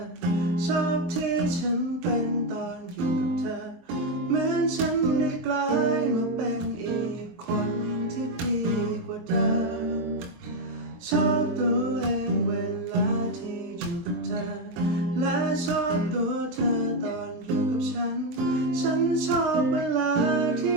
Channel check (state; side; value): late; left; 23 ms